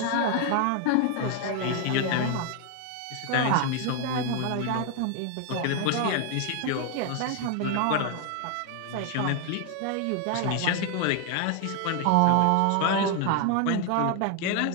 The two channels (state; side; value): different; both; correlation 0.01